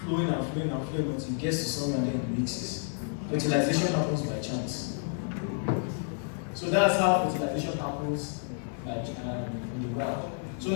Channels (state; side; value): silent; right; 58 dB below the other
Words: flowing until it gets to somewhere and then it mixes. Fertilization happens by chance. So that's how fertilization happens in the wild. So